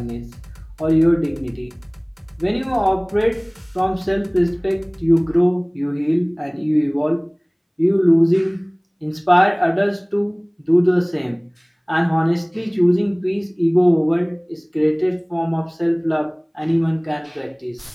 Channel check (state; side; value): identical; both; correlation 1.00